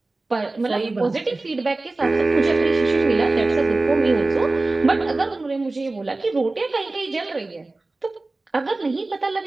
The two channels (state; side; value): quieter; left; 3.2 dB